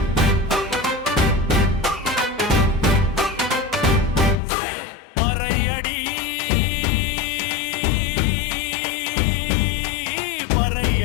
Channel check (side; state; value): right; drops out; at 4.4 s